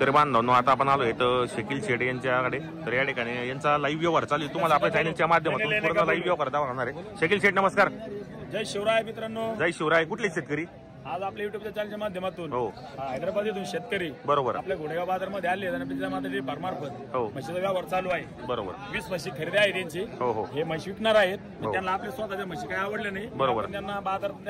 बांधवांनो, आता आपण आलोय तर शकील शेठ यांच्याकडे. तर या ठिकाणी यांचा लाईव्ह व्यवहार चालू आहे. तुम्हाला आपल्या चॅनलच्या माध्यमातून पूर्ण लाईव्ह व्यवहार दाखवणार आहे. शकील शेठ नमस्कार. जय शिवराय मित्रांनो. जय शिवराय. कुठले शेतकरी? आज आपल्या युट्यूबच्या चॅनलच्या माध्यमातून हो हैदराबाद शेतकरी बरोबर आपल्या घोडेगाव बाजारमध्ये आले आणि फार्मार्फत हो म्हशीचा व्यवहार चालू आहे. बरोबर 20 म्हशी खरेदी आहे त्यांची. हो हो हे म्हशी विकणार आहेत. त्यांना आपल्या स्वतःच्या म्हशी काही आवडल्या नाही. बरोबर. त्यांना बाजार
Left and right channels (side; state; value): both; identical; correlation 1.00